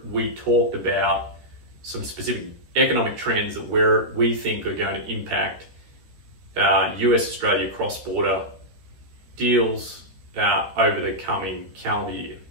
we talked about some specific economic trends that we think are going to impact US-Australia cross-border deals over the coming calendar year.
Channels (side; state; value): left; late; 13 ms